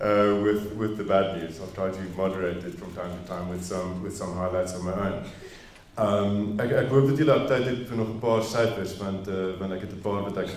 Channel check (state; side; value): identical; both; correlation 1.00